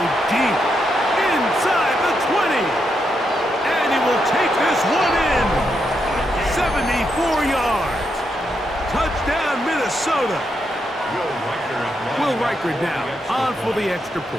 deep inside the 20. And he will take this one in. 74 yards. Touchdown, Minnesota. Will Reichard now on for the extra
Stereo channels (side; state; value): both; normal; correlation 0.82